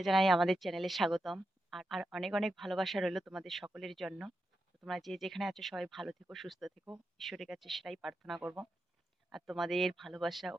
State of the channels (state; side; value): normal; both; correlation 0.88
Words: জানাই আমাদের চ্যানেলে স্বাগতম। আর অনেক অনেক ভালোবাসা রইলো তোমাদের সকলের জন্য। তো তোমরা যে যেখানে আছো সবাই ভালো থেকো, সুস্থ থেকো, ঈশ্বরের কাছে সেটাই প্রার্থনা করব। আর তোমাদের ভালোবাসা